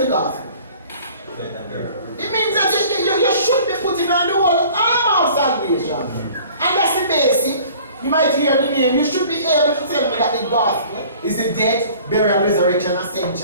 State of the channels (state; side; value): inverted; both; correlation -0.49